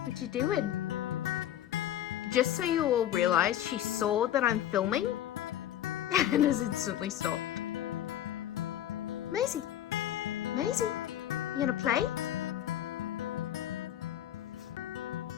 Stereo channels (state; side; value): quieter; right; 11.7 dB